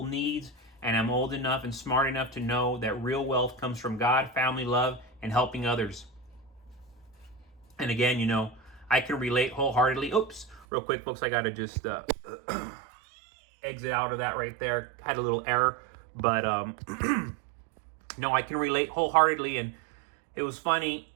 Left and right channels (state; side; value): drops out; left; at 10.7 s